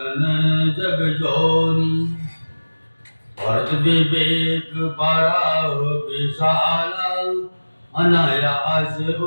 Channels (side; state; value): both; inverted; correlation -1.00